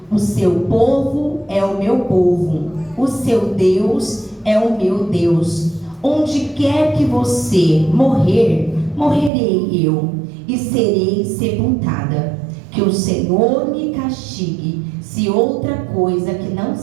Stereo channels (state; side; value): drops out; left; at 9.3 s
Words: O seu povo é o meu povo, o seu Deus é o meu Deus. Onde quer que você morrer, morrerei eu, e serei sepultada. Que o Senhor me castigue, se outra coisa que não